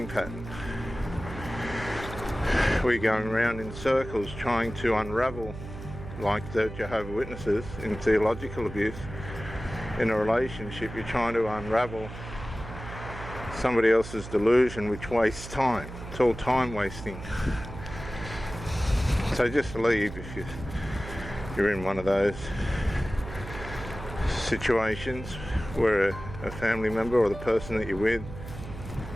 pattern. We're going around in circles trying to unravel, like the Jehovah's Witnesses in theological abuse. In a relationship, you're trying to unravel somebody else's delusion, which wastes time. It's all time wasting. So just leave if you're in one of those situations where a family member or the person that you're with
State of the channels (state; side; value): noise; right; hum, 11 dB below the sound